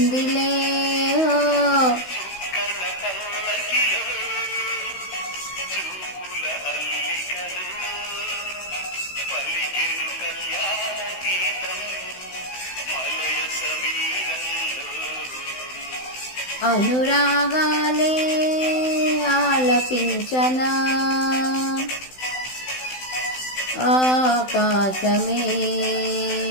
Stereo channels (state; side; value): late; right; 16 ms